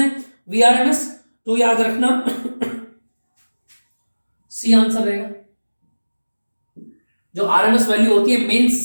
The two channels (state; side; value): inverted; both; correlation -1.00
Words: वीआरएमएस। तो याद रखना सी आंसर रहेगा। जो आरएमएस वैल्यू होती है